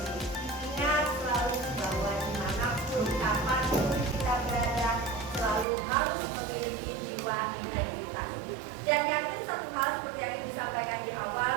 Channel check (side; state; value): left; drops out; at 5.7 s